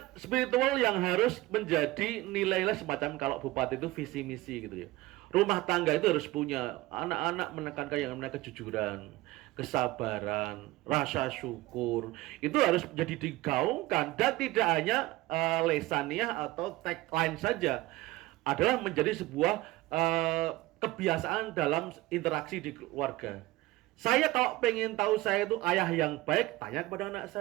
spiritual yang harus menjadi nilai-nilai semacam kalau bupati itu visi misi gitu ya. Rumah tangga itu harus punya anak-anak menekankan yang namanya kejujuran, kesabaran, rasa syukur. Itu harus menjadi digaungkan dan tidak hanya lesaniah atau tagline saja. Adalah menjadi sebuah kebiasaan dalam interaksi di keluarga. Saya kalau pengen tahu saya itu ayah yang baik, tanya kepada anak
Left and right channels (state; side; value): quieter; left; 18.5 dB